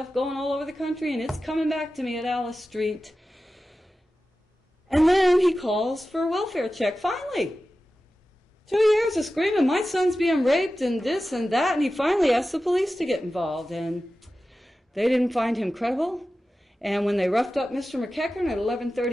going all over the country, and it's coming back to me at Alice Street. And then he calls for a welfare check, finally. 2 years of screaming, my son's being raped and this and that, and he finally asked the police to get involved, and they didn't find him credible. And when they roughed up Mr. McEachern at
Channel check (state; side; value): normal; both; correlation 0.94